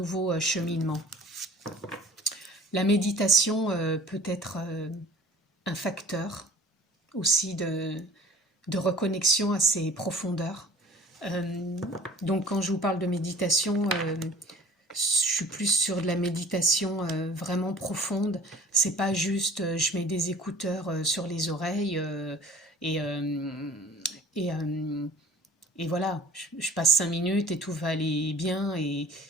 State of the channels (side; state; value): both; normal; correlation 0.47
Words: cheminement. La méditation peut être un facteur aussi de reconnexion à ses profondeurs. Donc quand je vous parle de méditation, je suis plus sur de la méditation vraiment profonde. C'est pas juste je mets des écouteurs sur les oreilles et, et, et voilà, je passe 5 minutes et tout va aller bien. Et